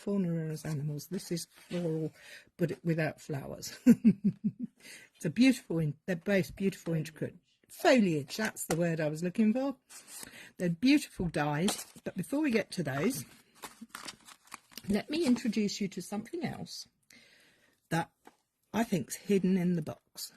are as animals. This is floral, but without flowers. It's a beautiful, they're both beautiful, intricate foliage. That's the word I was looking for. They're beautiful dies, but before we get to those, let me introduce you to something else that I think's hidden in the box,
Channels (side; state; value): both; identical; correlation 1.00